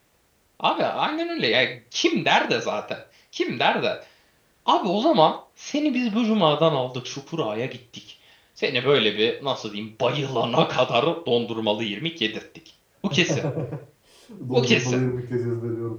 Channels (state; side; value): identical; both; correlation 1.00